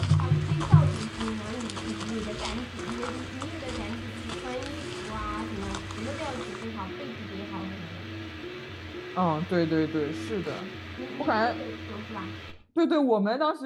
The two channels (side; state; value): both; identical; correlation 1.00